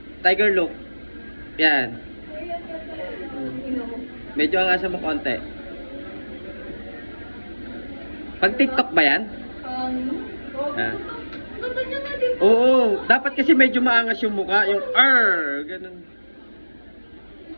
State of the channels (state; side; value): inverted; both; correlation -1.00